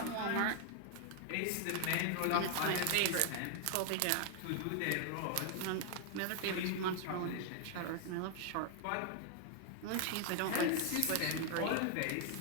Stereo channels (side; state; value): both; different; correlation 0.00